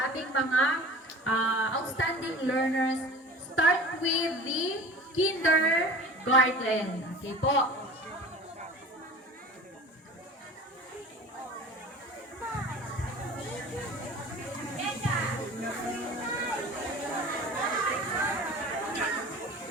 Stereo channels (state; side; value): normal; both; correlation 0.40